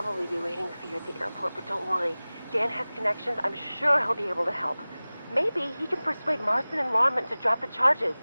be waiting for you at the airport, but don't worry. Dan has connections. I'm sure he'll be able to help. Maybe he can persuade Marston and Lorman to drop the charges.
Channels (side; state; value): both; inverted; correlation -0.99